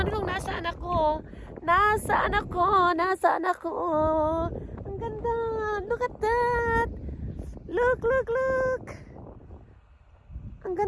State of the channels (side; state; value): both; identical; correlation 1.00